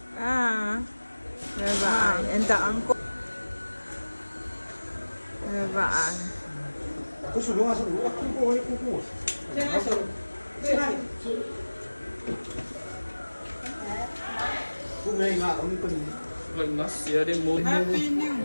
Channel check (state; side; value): inverted; both; correlation -1.00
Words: Bye-bye. And the uncle. Bye-bye. Happy New